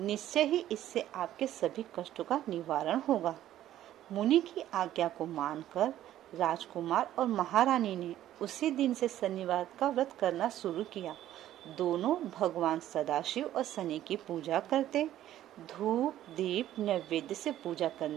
ही इससे आपके सभी कष्टों का निवारण होगा। मुनि की आज्ञा को मानकर राजकुमार और महारानी ने उसी दिन से शनिवार का व्रत करना शुरू किया। दोनों भगवान सदाशिव और शनि की पूजा करते। धूप दीप नैवेद्य से पूजा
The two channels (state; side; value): quieter; left; 12.7 dB